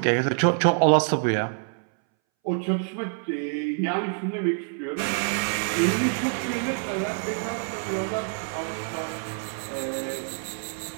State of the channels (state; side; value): silent; left; 61 dB below the other